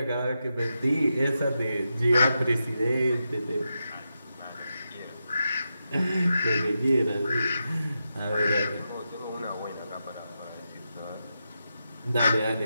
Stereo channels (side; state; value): both; inverted; correlation -0.88